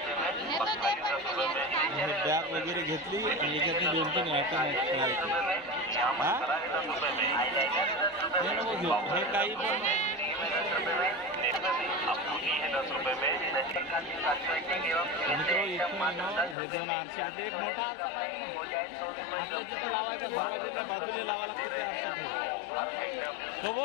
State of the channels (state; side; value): drops out; right; at 16.6 s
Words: बॅग वगैरे घेतली आणि याच्यातनी 2-3 आयटम आहेत। हे नको घेऊ, हे काही पण मित्रों इथून हे 2 आरसे आहेत। एक मोठा आरसा पाहिजे तिथे लावायचा, दरवाजाच्या बाजूला लावा लागते ते आरसे तो